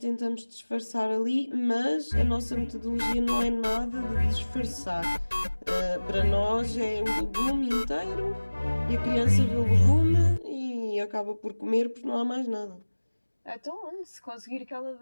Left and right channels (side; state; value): both; inverted; correlation -1.00